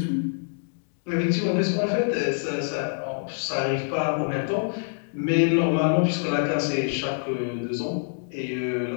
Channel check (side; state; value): right; silent; digital silence